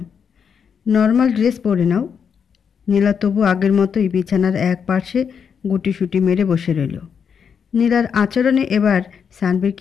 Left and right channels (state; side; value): quieter; right; 6.9 dB